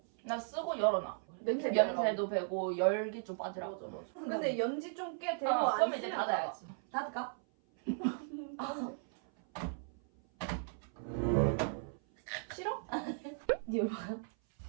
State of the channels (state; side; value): silent; left; 54 dB below the other